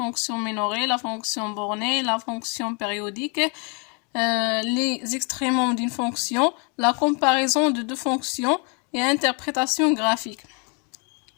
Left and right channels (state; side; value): quieter; right; 34.8 dB